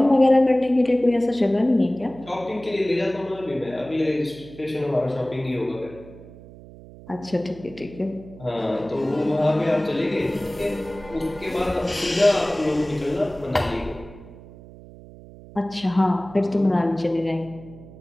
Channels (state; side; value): noise; right; hum, 19 dB below the sound